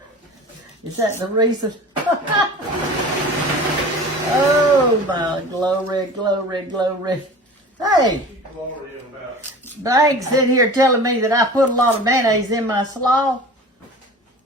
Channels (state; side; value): normal; both; correlation 0.39